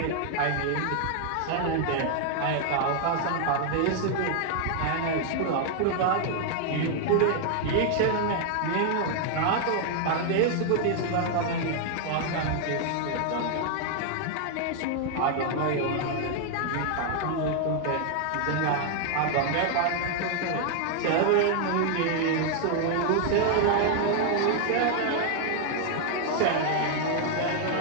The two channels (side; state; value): both; different; correlation 0.00